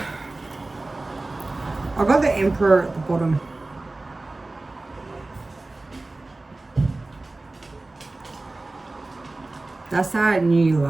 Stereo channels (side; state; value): left; quieter; 3.0 dB